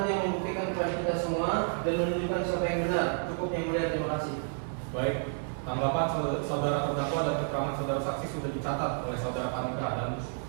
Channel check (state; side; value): silent; left; 57 dB below the other